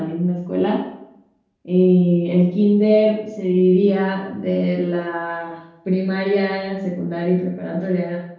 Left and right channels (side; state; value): both; identical; correlation 1.00